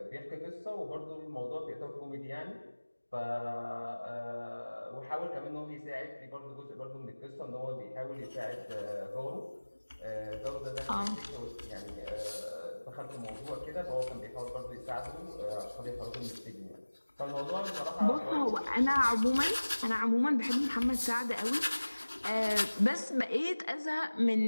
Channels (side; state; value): both; inverted; correlation -1.00